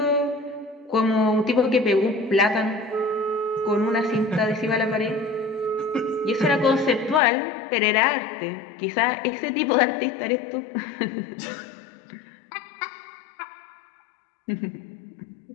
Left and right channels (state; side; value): drops out; right; at 7.2 s